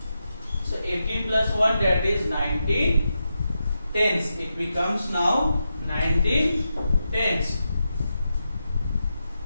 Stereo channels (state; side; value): inverted; both; correlation -0.87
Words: So 18 plus 1, that is 19 tens. It becomes now 19 tens.